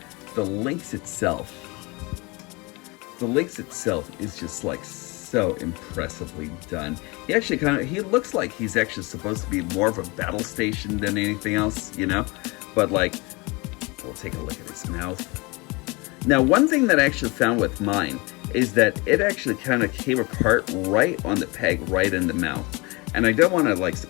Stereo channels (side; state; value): right; quieter; 26.2 dB